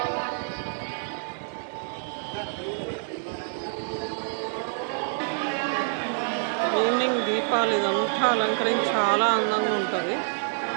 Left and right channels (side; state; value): left; silent; digital silence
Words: ఈవినింగ్ దీపాలు ఇదంతా అలంకరించి చాలా అందంగా ఉంటుంది.